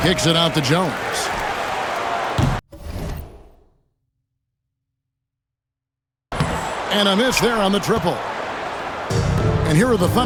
Kicks it out to Jones. And a miss there on the triple. And here are the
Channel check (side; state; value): both; identical; correlation 1.00